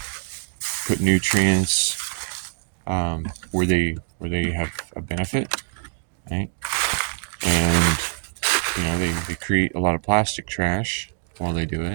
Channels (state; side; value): silent; left; digital silence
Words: put nutrients where they have a benefit, right? And they create a lot of plastic trash while they do